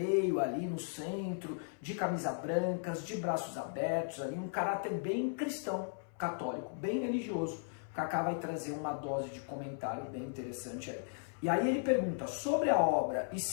ali no centro, de camisa brancas, de braços abertos, ali, um caráter bem cristão, católico, bem religioso. O Kaká vai trazer uma dose de comentário bem interessante aí. E aí ele pergunta sobre a obra e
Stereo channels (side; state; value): right; silent; 54 dB below the other